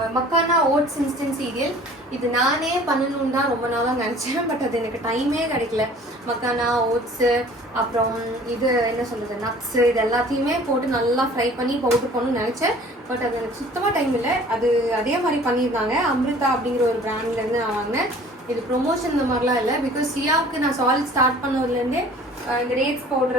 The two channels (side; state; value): both; normal; correlation 0.49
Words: மக்கானா ஓட்ஸ் இன்ஸ்டன்ட் சீரியல். இது நானே பண்ணணுன்னு தான் ரொம்ப நாளாக நினச்சேன், பட் அது எனக்கு டைமே கிடைக்கல. மக்கானா ஓட்ஸு, அப்புறம் இது என்ன சொல்கிறது, நட்ஸு, இது எல்லாத்தையுமே போட்டு நல்லா ஃப்ரை பண்ணி பவுடர் பண்ணணும்னு நினச்சேன், பட் அது எனக்கு சுத்தமாக டைம் இல்லை. அது அதே மாதிரி பண்ணியிருந்தாங்க, அமிர்தா அப்படிங்கிற ஒரு பிராண்ட்லேருந்து நான் வாங்கினேன். இது ப்ரொமோஷன் இந்த மாதிரிலாம் இல்லை, பிகாஸ் சியாவுக்கு நான் சாலிட் ஸ்டார்ட் பண்ணதுலேருந்தே இந்த டேட்ஸ்